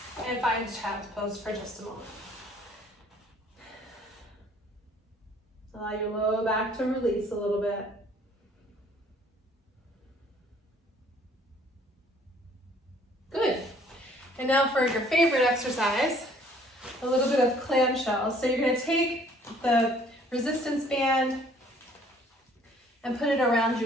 and find child's pose for just a moment. Allow your low back to release a little bit. Good. And now for your favorite exercise, a little bit of clamshell. So you're going to take the resistance band and put it around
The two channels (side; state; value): both; normal; correlation 0.58